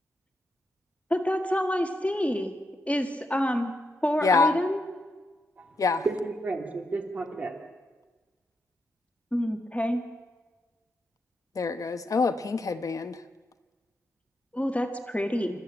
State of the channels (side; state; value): both; normal; correlation 0.82